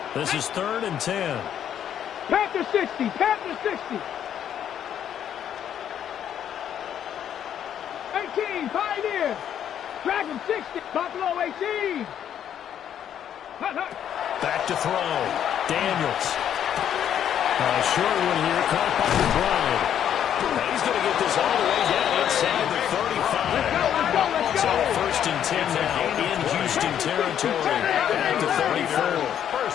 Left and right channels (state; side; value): quieter; right; 9.7 dB